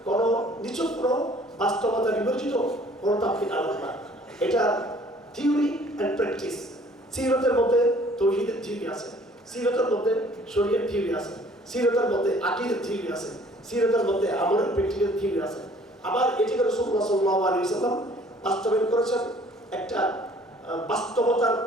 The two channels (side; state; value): both; normal; correlation 0.55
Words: কোনো নিছক কোনো বাস্তবতা বিবর্জিত কোনো তাত্ত্বিক আলোচনা, এটা থিওরি অ্যান্ড প্র্যাকটিস। সিরাতের মধ্যে তাওহীদের থিওরি আছে, সিরাতের মধ্যে শরীয়তের থিওরি আছে, সিরাতের মধ্যে আকীদার থিওরি আছে, সিরাতের মধ্যে আমলের প্র্যাকটিক্যাল থিওরি আছে। আবার এটিকে রাসূলুল্লাহ সাল্লাল্লাহু আলাইহি ওয়াসাল্লাম বাস্তবায়ন করেছেন একটা বাস্তবতার